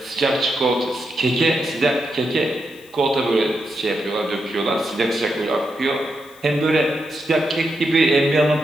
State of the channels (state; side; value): noise; left; hiss, 26 dB below the sound